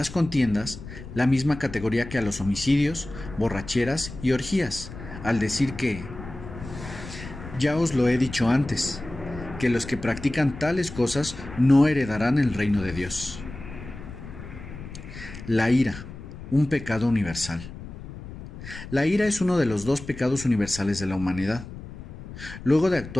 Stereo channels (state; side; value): noise; left; rumble, 13 dB below the sound